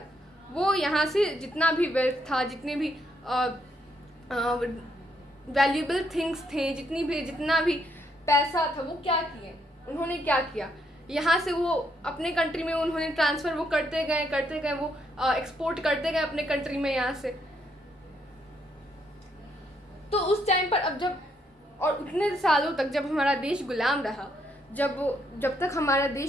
वो यहाँ से जितना भी वेल्थ था, जितने भी वैल्यूएबल थिंग्स थे, जितना भी पैसा था, वो क्या किए? उन्होंने क्या किया? यहाँ से वो अपने कंट्री में उन्होंने ट्रांसफ़र वो करते गए, वो एक्सपोर्ट करते गए अपने कंट्री में यहाँ से। तो उस टाइम पर अब जब और उतने सालों तक जब हमारा देश गुलाम रहा, जब तक हमारा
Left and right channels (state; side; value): normal; both; correlation 0.74